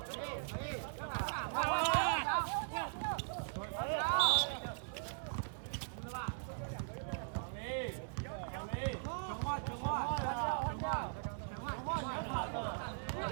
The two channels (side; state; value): left; silent; digital silence